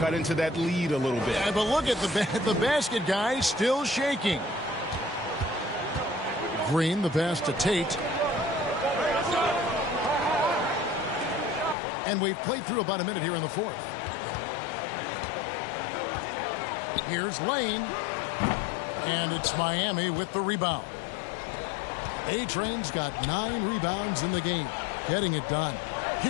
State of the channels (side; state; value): right; drops out; at 11.8 s